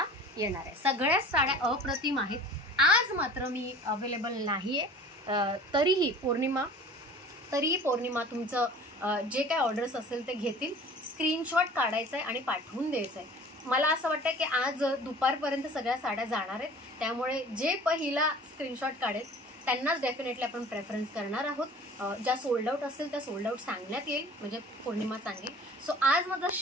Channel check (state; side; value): normal; both; correlation 0.45